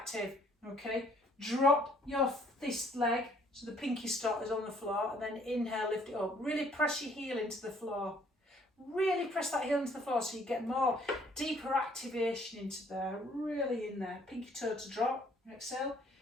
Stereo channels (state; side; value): normal; both; correlation 0.62